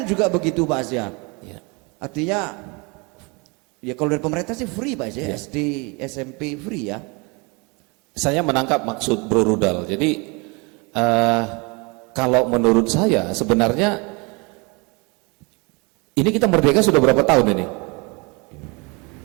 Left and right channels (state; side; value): quieter; left; 29.3 dB